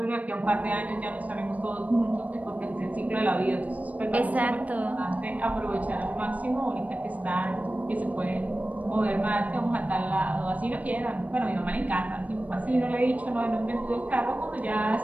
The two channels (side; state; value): left; late; 0.072 ms